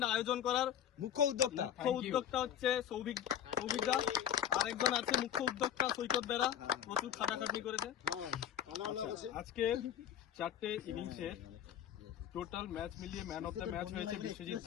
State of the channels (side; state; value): right; quieter; 9.8 dB